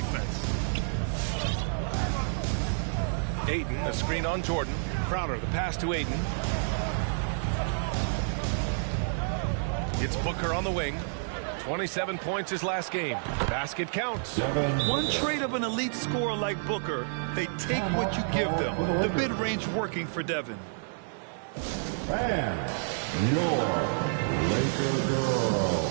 Ayton, a screen on Jordan. Crowder, the pass to Ayton. It's Booker on the wing. 27 points his last game. Basket counts. One trait of an elite scorer like Booker, they take what you give them. The mid-range working for Devin. And your Laker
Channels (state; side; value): silent; left; digital silence